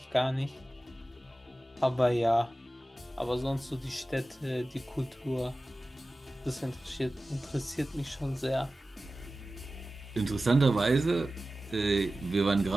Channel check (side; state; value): both; normal; correlation 0.95